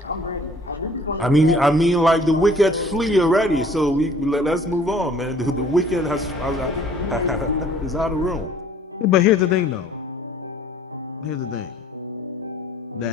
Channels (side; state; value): both; normal; correlation 0.54